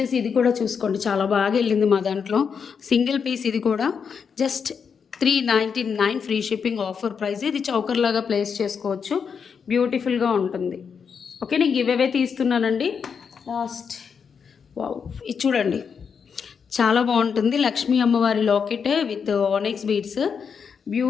ఇది కూడా చూసుకోండి, చాలా బాగా వెళ్ళింది మా దాంట్లో. సింగిల్ పీస్ ఇది కూడా just 399 free shipping offer price. ఇది చౌకర్ లాగా ప్లేస్ చేసుకోవచ్చు, బ్యూటిఫుల్గా ఉంటుంది. ఓకే, నేను గివ్ అవే తీస్తున్నానండి లాస్ట్. వావ్, ఇది చూడండి చాలా బాగుంటుంది. లక్ష్మీ అమ్మవారి లాకెట్ విత్ ఆనెక్స్ బీడ్స్,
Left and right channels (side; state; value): right; quieter; 6.4 dB